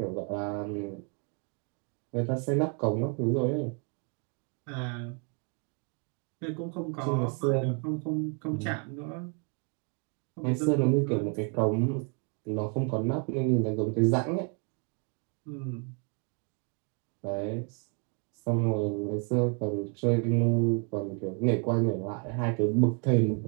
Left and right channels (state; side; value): quieter; left; 37.2 dB